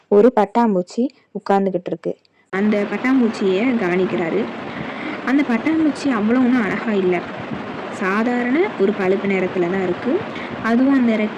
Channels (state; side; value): identical; both; correlation 1.00